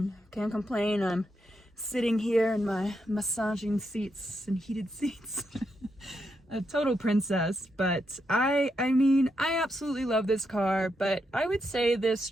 can't complain. I'm sitting here in my massaging seats and heated seats. A total princess. But I mean, I absolutely love this car, but I would say this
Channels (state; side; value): normal; both; correlation 0.82